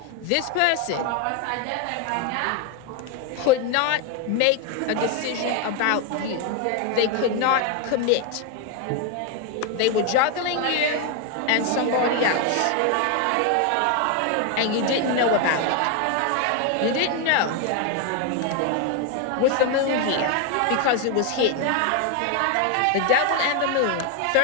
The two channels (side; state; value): both; different; correlation 0.01